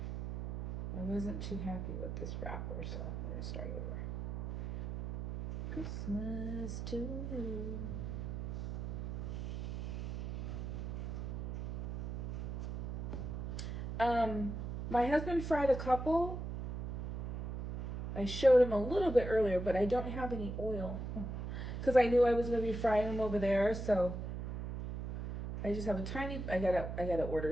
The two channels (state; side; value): noise; right; hum, 5 dB below the sound